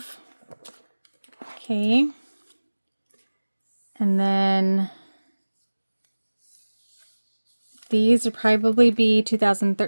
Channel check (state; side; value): inverted; both; correlation -1.00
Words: Okay. And then these would probably be